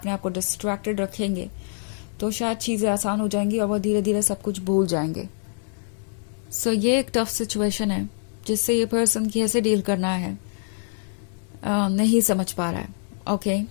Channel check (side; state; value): right; silent; digital silence